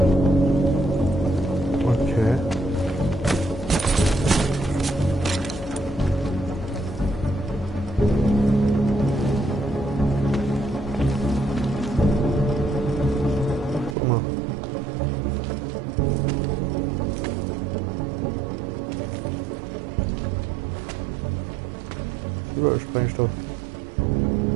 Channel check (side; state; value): left; drops out; at 14.0 s